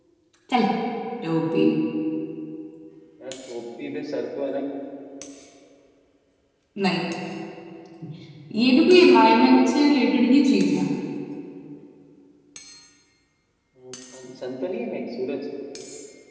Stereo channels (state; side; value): identical; both; correlation 1.00